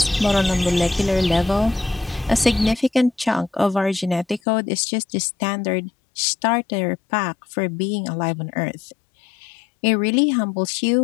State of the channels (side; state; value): right; drops out; at 4.4 s